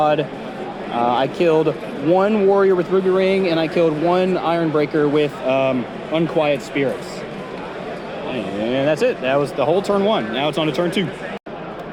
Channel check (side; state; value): both; identical; correlation 1.00